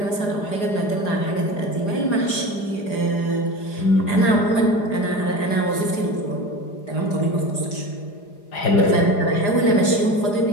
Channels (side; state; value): right; late; 4.9 ms